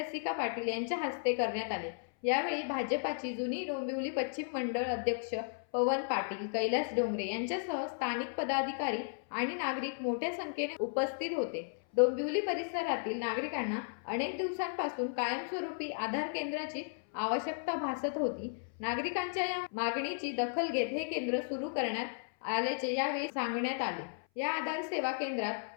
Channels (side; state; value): right; silent; 55 dB below the other